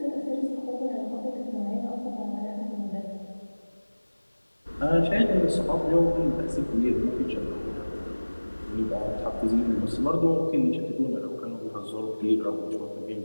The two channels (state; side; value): inverted; both; correlation -1.00